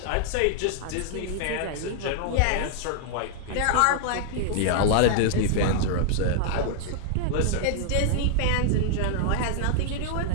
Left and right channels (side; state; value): both; different; correlation 0.00